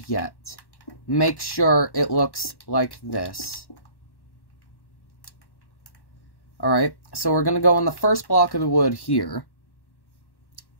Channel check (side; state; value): right; late; 1.1 ms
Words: yet. Make sure it looks like this. Alright, so we're going to go on the first block of the wood here.